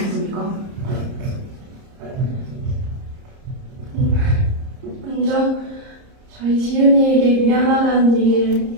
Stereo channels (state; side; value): late; left; 30 ms